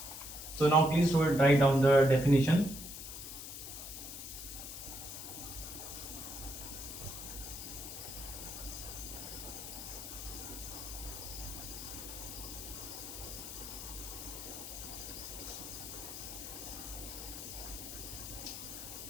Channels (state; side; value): noise; left; hiss, 9 dB below the sound